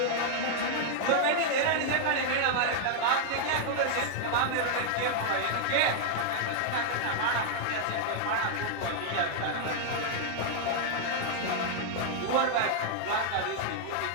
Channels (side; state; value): both; different; correlation -0.01